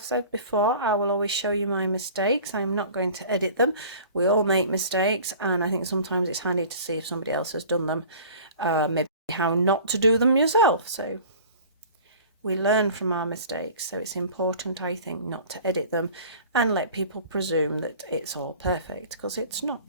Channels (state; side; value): inverted; both; correlation -0.44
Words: said before, I will always show you my mistakes. I'm not going to edit them. We all make mistakes, and I think sometimes it's handy to see if somebody else has done them, maybe how not to do them yourself. So we learn from our mistakes, so it's important, I think, not to edit them and let people presume that it's all perfect, because it's